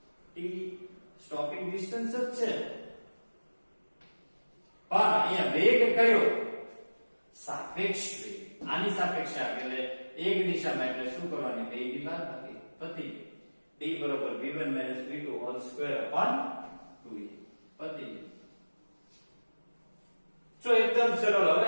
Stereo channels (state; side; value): inverted; both; correlation -1.00